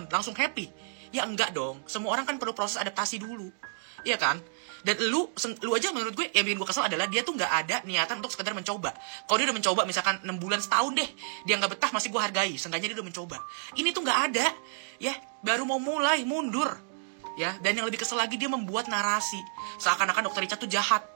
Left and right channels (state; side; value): silent; left; digital silence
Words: langsung happy? Ya enggak dong. Semua orang kan perlu proses adaptasi dulu, iya kan? Dan lu aja menurut gue yang bikin gue kesel adalah dia tuh nggak ada niatan untuk sekedar mencoba. Kalau dia udah mencoba misalkan 6 bulan, setahun deh, dia nggak betah, masih gue hargai. Seenggaknya dia udah mencoba. Ini tuh nggak ada, ya baru mau mulai mundur, ya. Dan yang lebih kesel lagi, dia membuat narasi seakan-akan Dr. Richard tuh jahat,